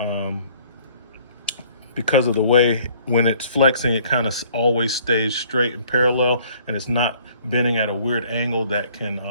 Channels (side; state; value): both; inverted; correlation -0.58